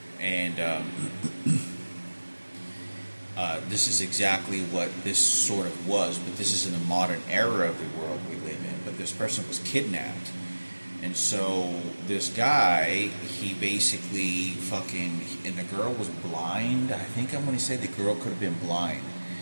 And this is exactly what this sort of was, but this is in the modern era of the world we live in. But this person was kidnapped, and so this guy, he basically and the girl was blind. I think I'm going to say the girl could have been blind,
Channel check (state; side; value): inverted; both; correlation -1.00